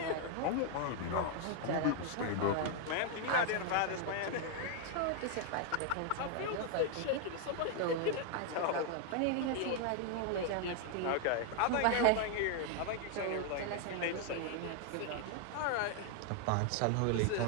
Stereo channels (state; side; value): different; both; correlation 0.00